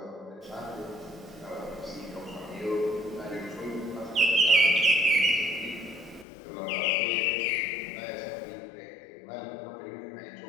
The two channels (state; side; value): drops out; right; at 6.2 s